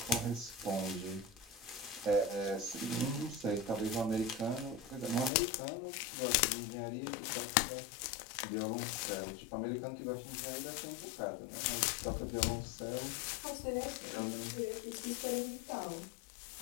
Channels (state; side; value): drops out; right; at 5.3 s